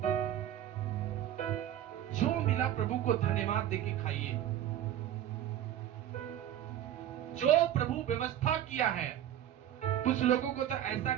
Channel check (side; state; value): left; quieter; 11.4 dB